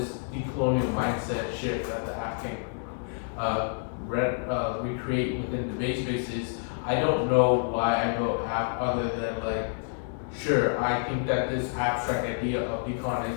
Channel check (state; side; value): silent; right; digital silence